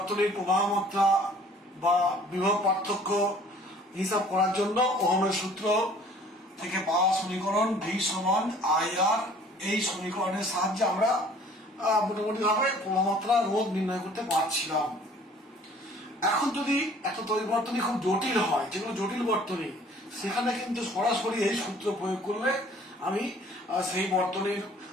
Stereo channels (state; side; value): normal; both; correlation 0.53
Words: প্রবাহ মাত্রা বা বিভব পার্থক্য হিসাব করার জন্য ওহমের সূত্র থেকে পাওয়া সমীকরণ V সমান IR এই সমীকরণের সাহায্যে আমরা মোটামুটি ভাবে প্রবাহমাত্রা রোধ নির্ণয় করতে পারছিলাম। এখন যদি একটা তড়িৎ বর্তনী খুব জটিল হয়, যেগুলো জটিল বর্তনী, সেখানে কিন্তু সরাসরি এই সূত্র প্রয়োগ করলে আমি সেই বর্তনীর